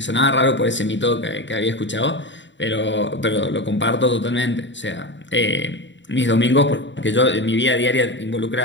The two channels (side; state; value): right; late; 0.53 ms